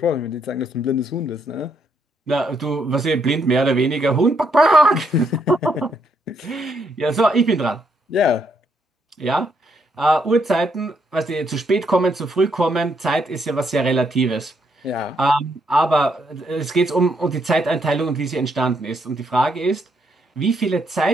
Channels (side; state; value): both; normal; correlation 0.75